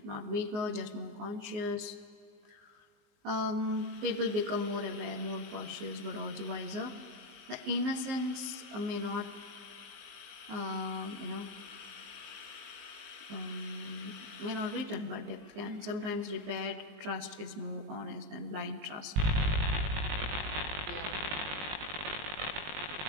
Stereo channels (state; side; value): late; left; 19 ms